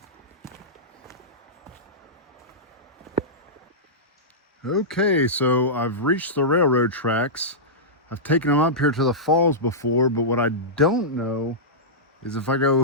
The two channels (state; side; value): normal; both; correlation -0.14